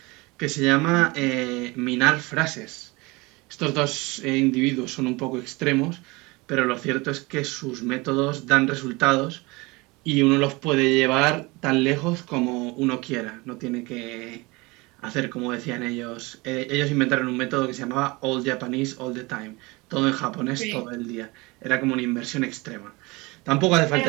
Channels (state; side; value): quieter; left; 24.2 dB